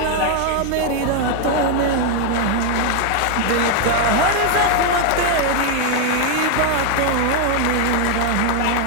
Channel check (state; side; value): different; both; correlation 0.00